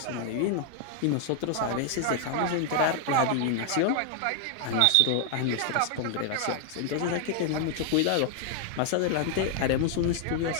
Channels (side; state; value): both; different; correlation 0.00